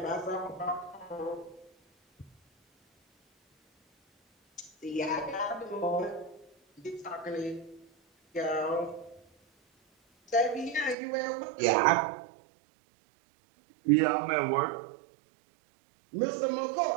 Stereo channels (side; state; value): left; drops out; at 11.0 s